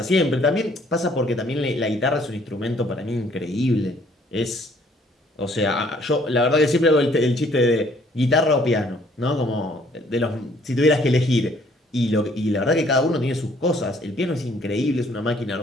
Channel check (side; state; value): both; normal; correlation 0.62